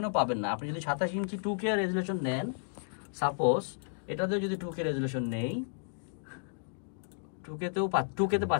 পাবেন না। আপনি যদি 27 ইঞ্চি 2K রেজুলেশন নেন, সাপোজ এটাতেও যদি 2K রেজুলেশন নেই, 2K-তে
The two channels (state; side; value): silent; right; digital silence